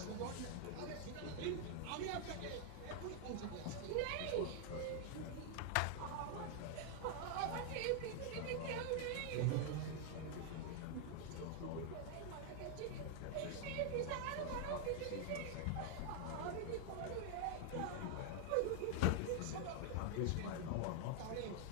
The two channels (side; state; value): both; different; correlation 0.00